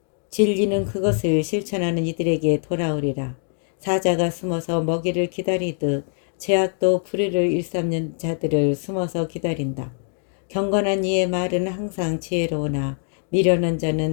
진리는 그것을 실천하는 이들에게 돌아오리라. 사자가 숨어서 먹이를 기다리듯 죄악도 불의를 일삼는 자들을 숨어서 기다린다. 경건한 이의 말은 항상 지혜로우나 미련한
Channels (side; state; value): right; silent; 57 dB below the other